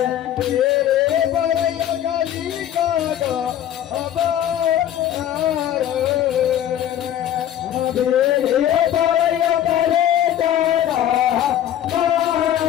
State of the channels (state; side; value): quieter; right; 11.0 dB